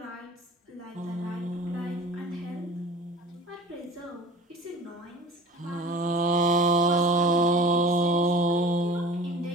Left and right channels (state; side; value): normal; both; correlation 0.40